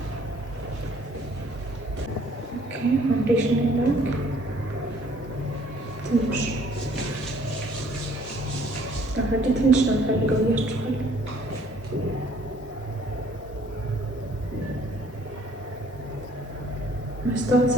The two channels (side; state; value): both; normal; correlation 0.59